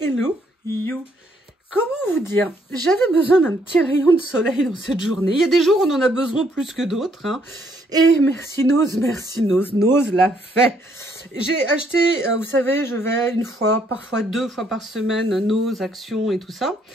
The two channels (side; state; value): both; normal; correlation 0.70